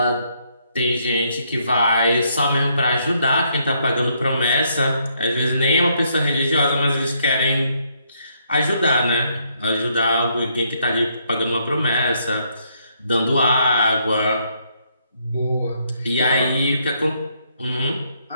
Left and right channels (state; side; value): inverted; both; correlation -0.73